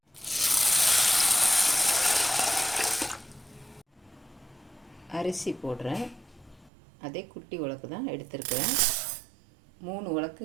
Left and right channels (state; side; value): drops out; left; at 6.7 s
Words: அரிசி போடுறேன். அதே குட்டி உலக்கு தான் எடுத்துருக்கிறேன். 3